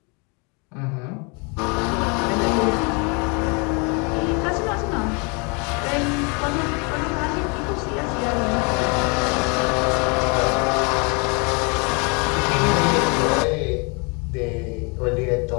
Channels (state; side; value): quieter; right; 32.5 dB